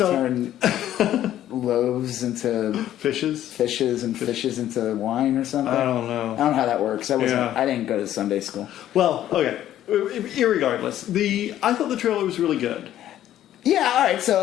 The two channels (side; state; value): right; quieter; 12.2 dB